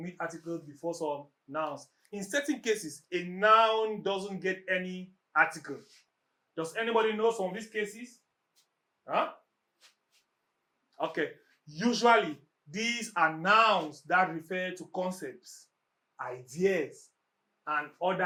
articles before some nouns. In certain cases, a noun doesn't get any article. Does anybody know some of these cases? Huh? Okay. Usually, these are nouns that refer to concepts, ideas, and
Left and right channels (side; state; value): both; identical; correlation 1.00